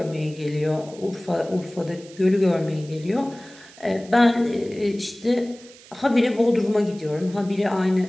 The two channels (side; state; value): right; noise; hiss, 22 dB below the sound